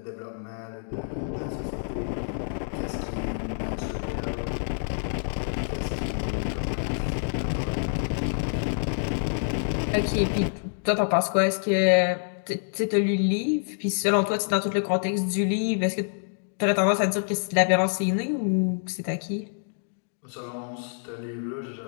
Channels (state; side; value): silent; right; digital silence